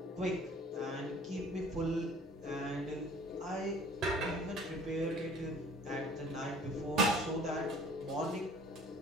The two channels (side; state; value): both; normal; correlation 0.50